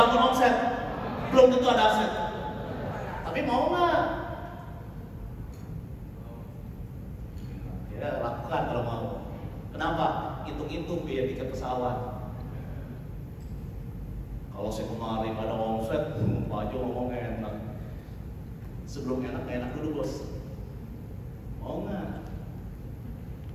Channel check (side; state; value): both; identical; correlation 1.00